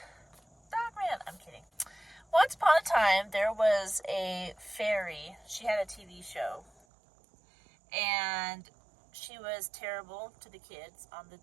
Dogman. I'm kidding. Once upon a time, there was a fairy. She had a TV show. And she was terrible to the kids on the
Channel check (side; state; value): left; drops out; at 6.7 s